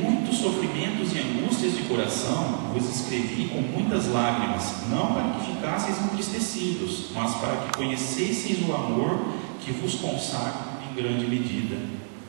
sofrimentos e angústias de coração, vos escrevi com muitas lágrimas, não para que ficasseis entristecidos, mas para que conhecesseis o amor que vos consagra em grande medida.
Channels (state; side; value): silent; left; digital silence